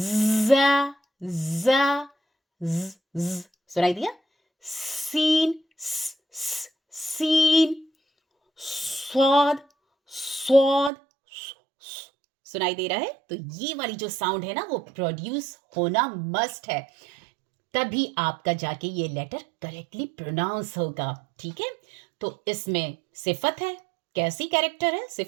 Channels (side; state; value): left; drops out; at 10.9 s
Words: ज़, ज़, ज़, सुनाई दिया? सीन, सीन, स्वाद, स्वाद, सुनाई दे रहा है? तो ये वाली जो साउंड है ना, वो प्रोड्यूस होना मस्ट है, तभी आपका जाके ये लेटर करेक्टली प्रोनाउंस होगा। ठीक है, तो इसमें सिफत है। कैसी कैरेक्टर है?